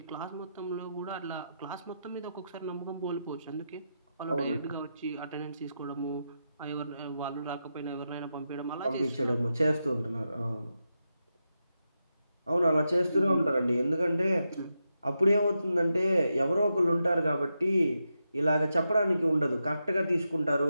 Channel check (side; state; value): both; inverted; correlation -0.86